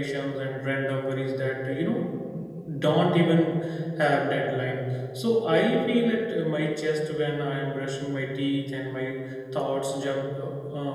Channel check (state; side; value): identical; both; correlation 1.00